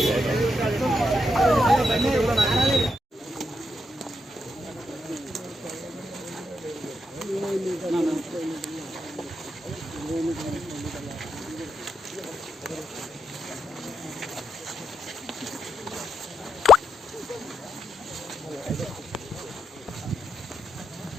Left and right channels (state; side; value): normal; both; correlation 0.82